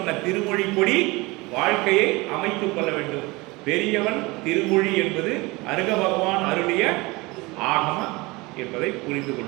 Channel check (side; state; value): left; quieter; 23.5 dB